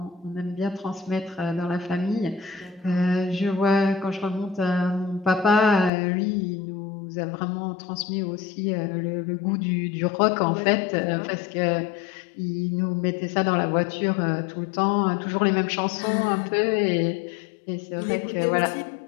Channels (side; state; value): right; drops out; at 5.9 s